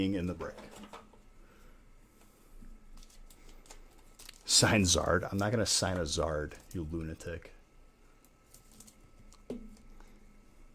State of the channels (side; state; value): both; identical; correlation 1.00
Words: in the break. Sign Zard. I'm not going to sign a Zard, you lunatic. I'm